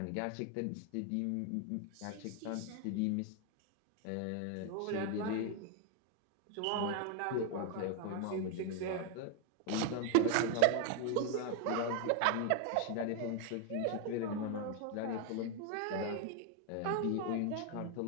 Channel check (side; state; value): both; different; correlation 0.01